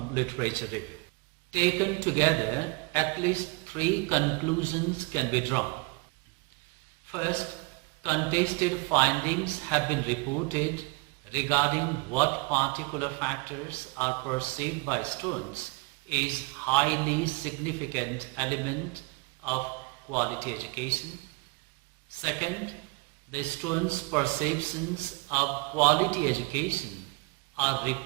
literature review. Taken together, at least 3 conclusions can be drawn. First, contested findings have been reported regarding what particular factors are perceived by students is highly significant element of quality education. Second, the students' perceptions of quality education are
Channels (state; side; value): quieter; left; 27.3 dB